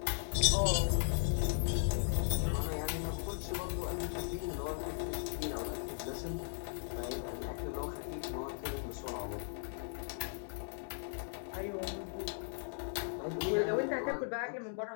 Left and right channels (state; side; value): silent; right; digital silence